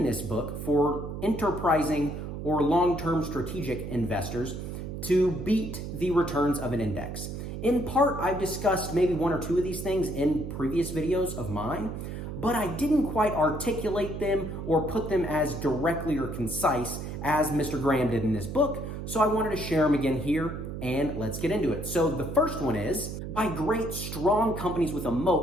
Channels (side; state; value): right; noise; hum, 7 dB below the sound